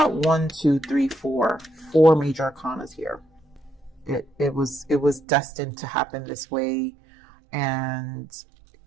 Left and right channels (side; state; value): left; drops out; at 5.2 s